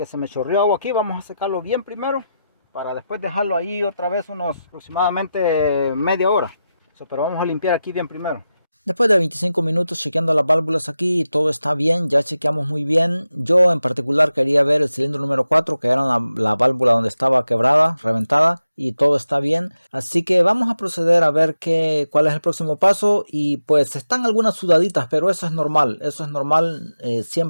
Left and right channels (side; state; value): both; inverted; correlation -0.91